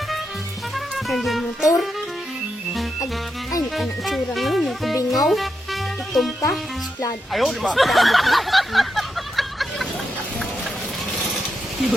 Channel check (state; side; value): normal; both; correlation 0.85